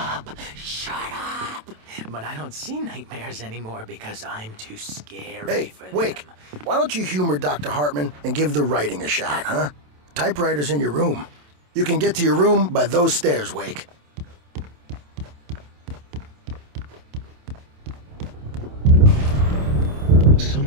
Shut up. But I don't see nightmares anymore because I'm too scary for them. Wake, why don't you humor Dr. Hartman and give the writing a shot, huh? Typewriter's in your room. You can get to your room by those stairs, Wake.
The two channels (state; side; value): late; left; 27 ms